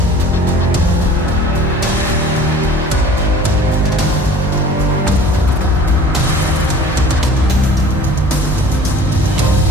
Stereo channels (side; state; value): both; normal; correlation 0.45